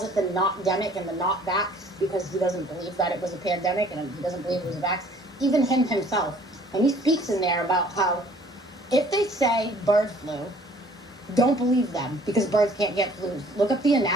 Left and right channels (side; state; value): both; normal; correlation 0.55